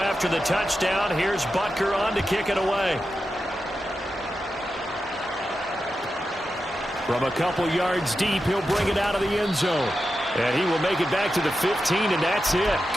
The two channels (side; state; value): both; normal; correlation 0.90